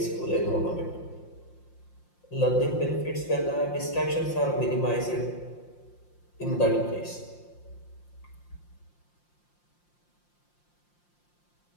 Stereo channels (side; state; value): right; late; 5.7 ms